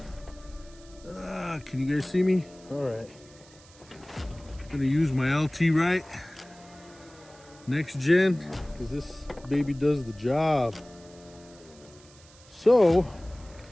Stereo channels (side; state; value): right; noise; hiss, 24 dB below the sound